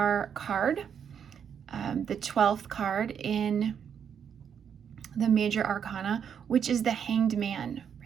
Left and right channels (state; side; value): quieter; left; 7.8 dB